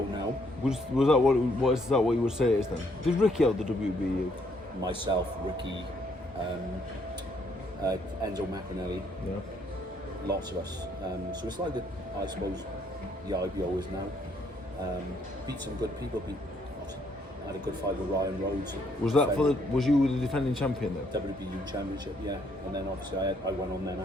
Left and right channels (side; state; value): both; normal; correlation 0.69